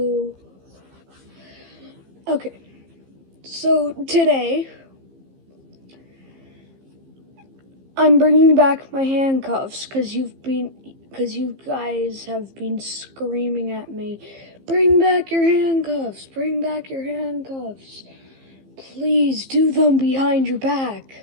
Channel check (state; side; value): late; left; 15 ms